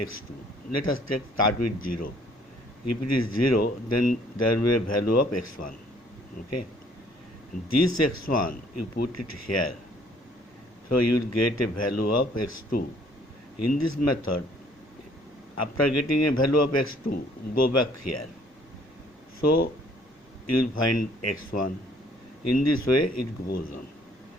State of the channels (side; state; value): both; normal; correlation 0.60